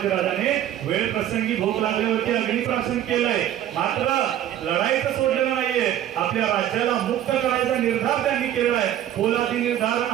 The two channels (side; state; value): left; quieter; 11.5 dB